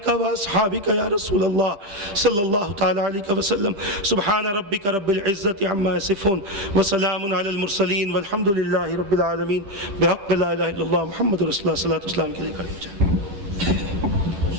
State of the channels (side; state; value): left; late; 10 ms